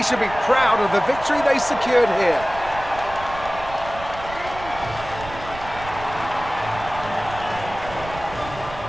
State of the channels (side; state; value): right; noise; rumble, 14 dB below the sound